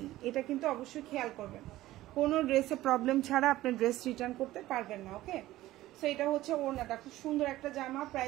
এটা কিন্তু অবশ্যই খেয়াল করবেন। কোনো ড্রেসে প্রবলেম ছাড়া আপনি ড্রেস রিটার্ন করতে পারবেন না, ওকে? সো এটা হচ্ছে ওড়নাটা, খুব সুন্দর একটা জামা,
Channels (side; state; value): left; quieter; 15.9 dB